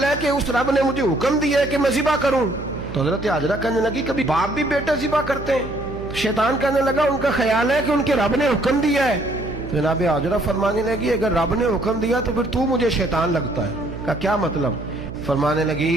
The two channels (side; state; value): right; noise; hum, 11 dB below the sound